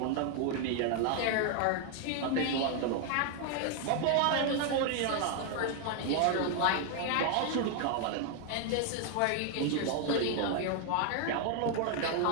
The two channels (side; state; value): both; different; correlation 0.00